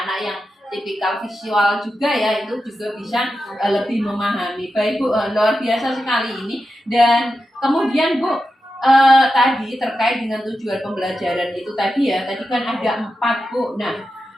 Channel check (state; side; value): normal; both; correlation 0.90